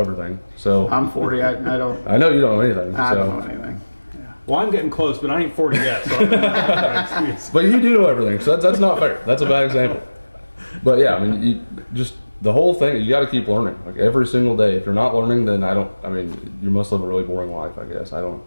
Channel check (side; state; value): both; inverted; correlation -1.00